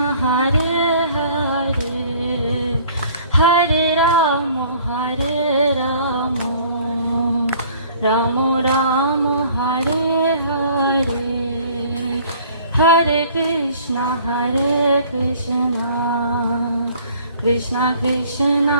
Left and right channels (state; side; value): inverted; both; correlation -0.54